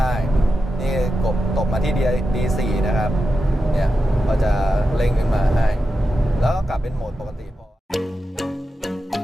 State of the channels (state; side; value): normal; both; correlation 0.90